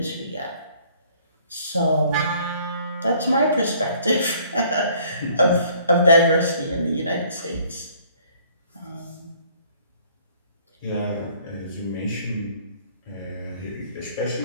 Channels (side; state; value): both; inverted; correlation -0.59